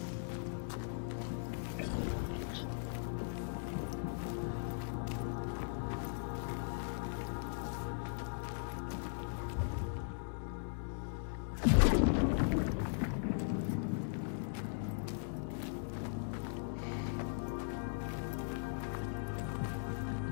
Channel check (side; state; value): right; silent; digital silence